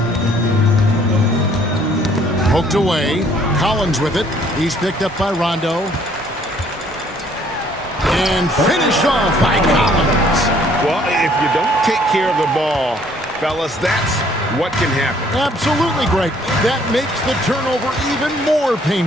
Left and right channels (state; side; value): normal; both; correlation 0.61